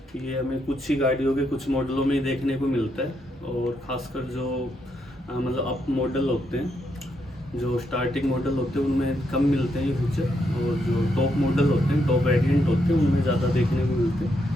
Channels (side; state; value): both; normal; correlation 0.79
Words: ये हमें कुछ ही गाड़ियों के कुछ मॉडलों में ही देखने को मिलता है, और ख़ासकर जो मतलब अप मॉडल होते हैं, जो स्टार्टिंग मॉडल होते हैं उनमें कम मिलते हैं ये फीचर, और जो टॉप मॉडल होते हैं, टॉप वेरिएंट होते हैं, उनमें ज़्यादा देखने को मिलते